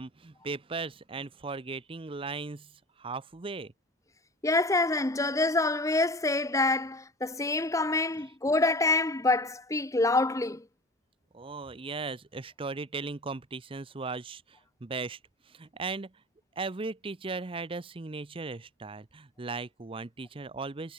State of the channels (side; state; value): both; normal; correlation 0.35